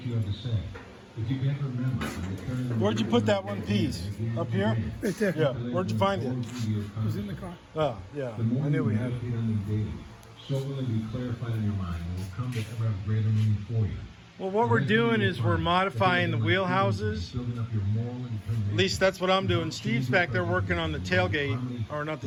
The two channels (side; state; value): both; identical; correlation 1.00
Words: you have to say. If you can't remember, Where'd you put that one piece? Up here? Right there. Yeah. Where'd you find it? It was in the car. Oh, yeah. I knew we had it. So will it be clarified in your mind and will come to ever have greater meaning for you. Well, what we're doing is we're modifying the wheelhouses. At least that's what I'm doing. Steve's back there working on the tailgate, or not